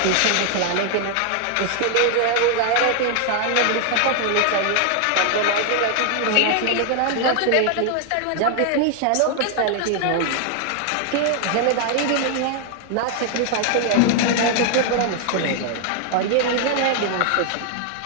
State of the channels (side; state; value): both; different; correlation 0.00